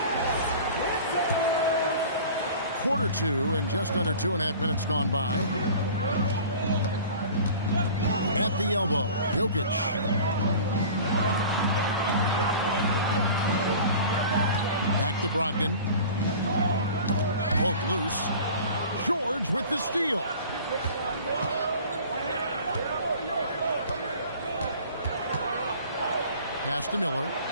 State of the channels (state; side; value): inverted; both; correlation -0.42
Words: Quarter 2 and just under 2.5 minutes gone by. At the elbow, Jokic. Back to Brogdon. Poked loose. George with the steal. Pass to Miller.